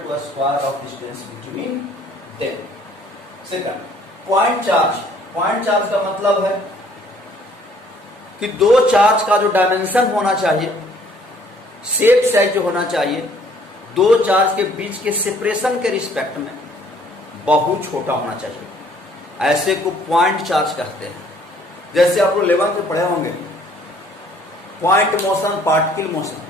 to a square of distance between them. Second, point charge. Point charge का मतलब है कि 2 charge का जो dimension होना चाहिए, शेप साइज जो होना चाहिए, 2 चार्ज के बीच के सेपरेशन के रिस्पेक्ट में बहुत छोटा होना चाहिए। ऐसे को पॉइंट चार्ज कहते हैं। जैसे आप लोग 11th में पढ़े होंगे, point motion, particle motion.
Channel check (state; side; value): normal; both; correlation 0.59